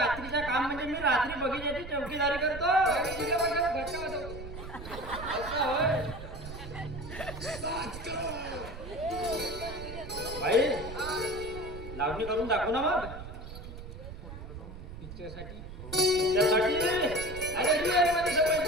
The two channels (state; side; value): noise; right; rumble, 11 dB below the sound